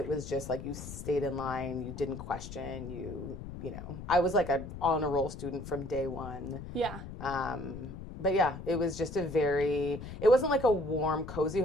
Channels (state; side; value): noise; left; rumble, 10 dB below the sound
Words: was just like you stayed in line, you didn't question, I was like a on a roll student from day one. Yeah. But yeah, it was just it wasn't like a warm, cozy